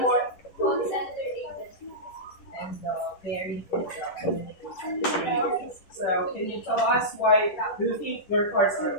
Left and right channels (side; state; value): right; late; 10 ms